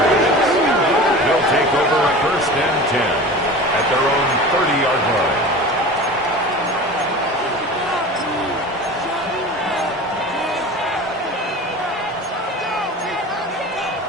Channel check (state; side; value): normal; both; correlation 0.35